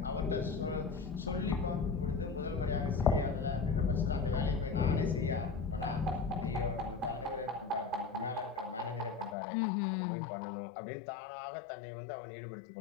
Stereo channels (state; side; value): drops out; right; at 9.3 s